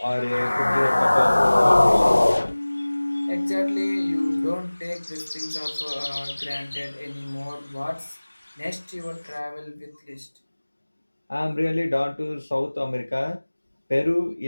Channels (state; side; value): inverted; both; correlation -1.00